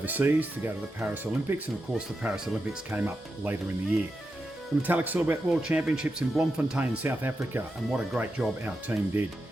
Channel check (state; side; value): normal; both; correlation 0.88